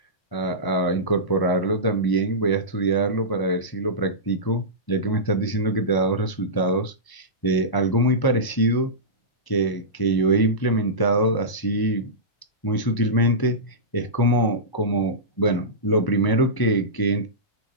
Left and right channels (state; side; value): late; right; 1.0 ms